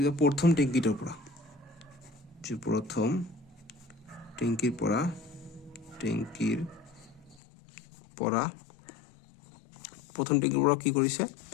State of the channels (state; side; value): drops out; right; at 7.4 s